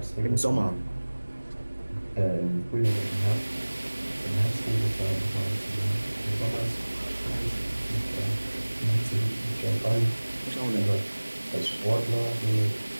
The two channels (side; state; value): both; inverted; correlation -1.00